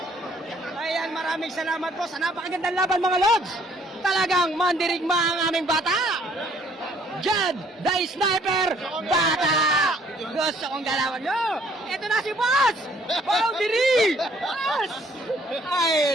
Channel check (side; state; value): both; normal; correlation 0.62